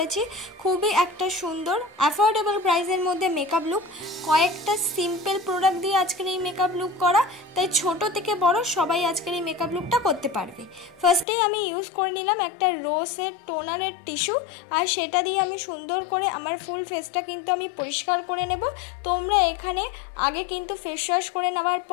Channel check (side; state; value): right; drops out; at 11.2 s